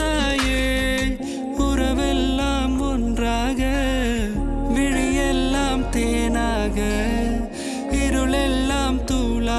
உறவெல்லாம் ஒன்றாக விழியெல்லாம் தேனாக இருளெல்லாம்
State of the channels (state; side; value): identical; both; correlation 1.00